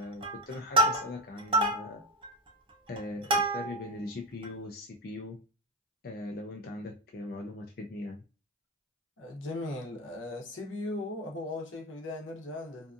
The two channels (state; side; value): normal; both; correlation 0.16